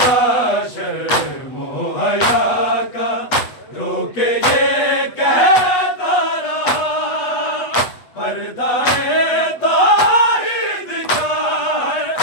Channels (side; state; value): right; late; 8.2 ms